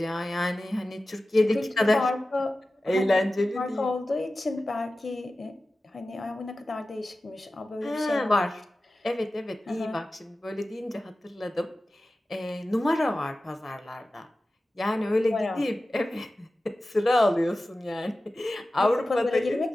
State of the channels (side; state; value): both; normal; correlation 0.95